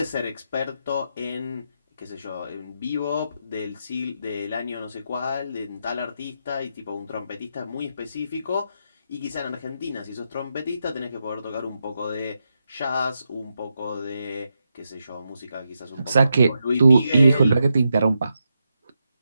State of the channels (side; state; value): both; inverted; correlation -0.85